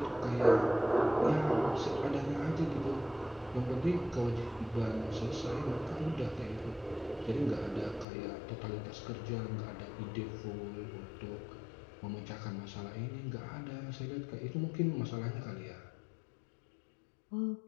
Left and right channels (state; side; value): drops out; right; at 8.1 s